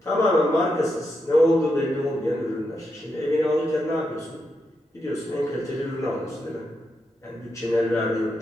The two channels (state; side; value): normal; both; correlation 0.84